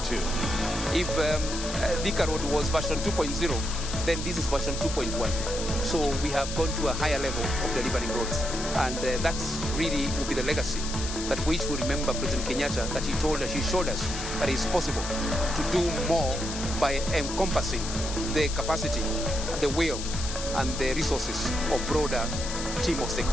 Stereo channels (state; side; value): noise; left; hiss, 7 dB below the sound